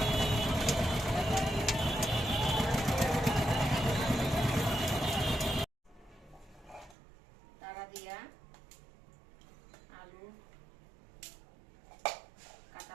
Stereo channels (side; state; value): left; drops out; at 7.0 s